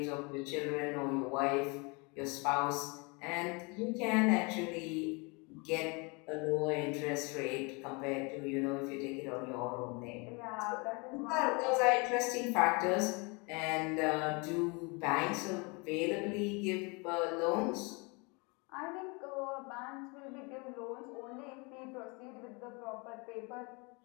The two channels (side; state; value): right; quieter; 29.9 dB